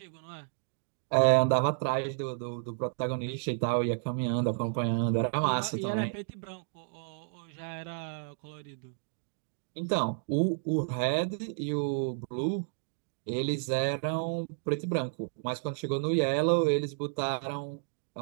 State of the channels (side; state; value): left; silent; digital silence